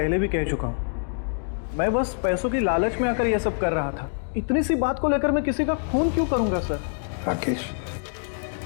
भी कह चुका हूं, मैं बस पैसों की लालच में आकर यह सब कर रहा था। इतनी सी बात को लेकर मैं किसी का खून क्यों करूंगा सर? राकेश,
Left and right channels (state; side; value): silent; right; digital silence